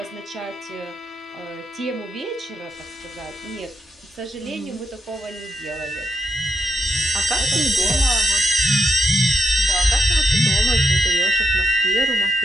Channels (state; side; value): normal; both; correlation 0.81